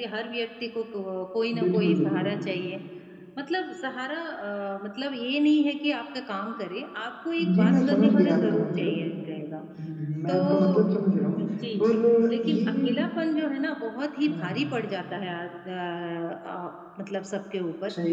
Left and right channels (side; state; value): both; identical; correlation 1.00